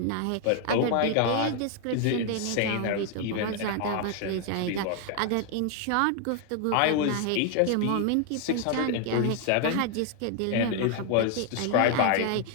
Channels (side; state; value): both; different; correlation 0.00